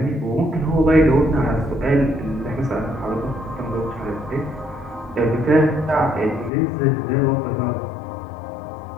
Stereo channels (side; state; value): right; drops out; at 6.5 s